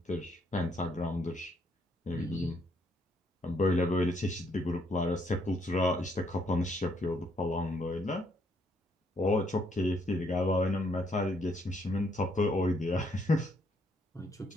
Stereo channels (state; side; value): normal; both; correlation 0.71